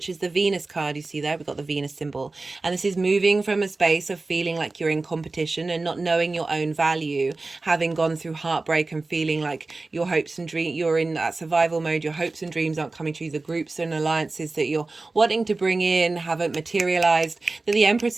is the Venus card. You see there, we've got the Venus symbol, and this is moving from a space of feeling like you're in competition and not knowing your own value, having gone through heartbreak and feeling like your hopes and dreams, you're in that survival mode, your hopes and dreams aren't coming true, the groups and alliances that you're wanting to bring in haven't materialized, that the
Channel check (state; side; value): quieter; left; 3.4 dB